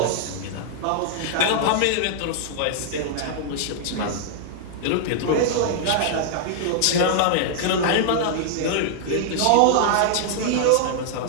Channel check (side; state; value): both; different; correlation -0.01